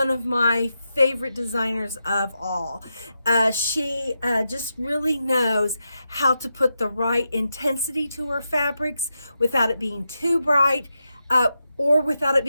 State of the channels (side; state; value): both; inverted; correlation -0.87